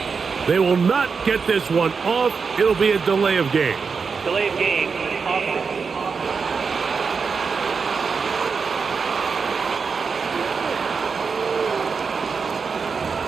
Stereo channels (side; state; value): left; quieter; 5.3 dB